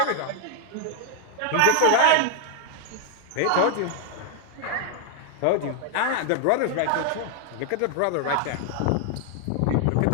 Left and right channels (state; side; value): different; both; correlation 0.00